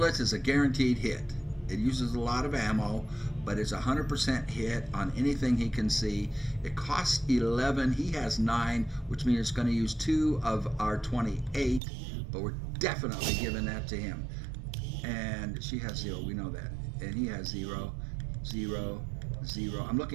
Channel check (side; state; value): left; drops out; at 11.8 s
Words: is a guaranteed hit. It uses a lot of ammo, but it's 100% hit on anything he can see. It costs 11. He has 9, which means it's going to use 2 of our 28, but we're definitely giving that to him. And she has 0. We know that. And he has 0, 0, 0. I'm